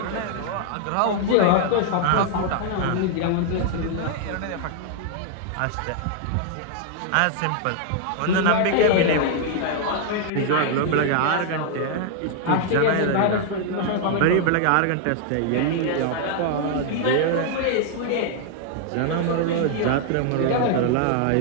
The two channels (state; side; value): different; both; correlation 0.00